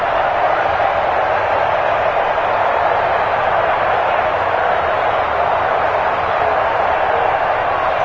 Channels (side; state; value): both; identical; correlation 1.00